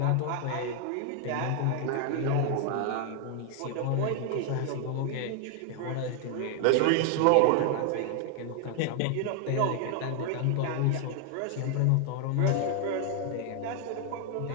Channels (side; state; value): both; different; correlation 0.00